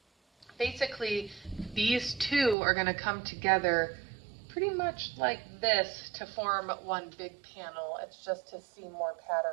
Basically, these 2 are going to come together pretty much like this to form one big panel. It's just to see more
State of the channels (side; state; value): left; drops out; at 2.6 s